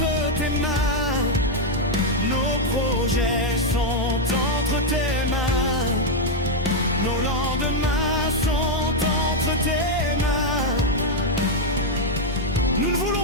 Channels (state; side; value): normal; both; correlation 0.00